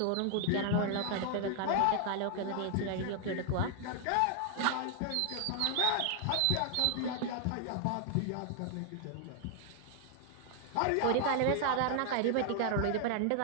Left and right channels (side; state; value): both; different; correlation 0.00